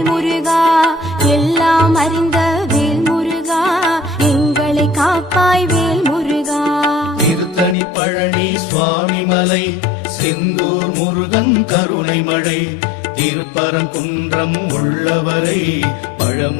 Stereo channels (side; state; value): right; drops out; at 7.8 s